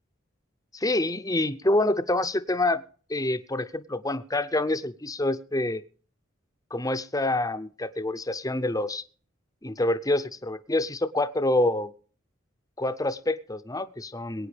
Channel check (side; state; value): both; normal; correlation 0.59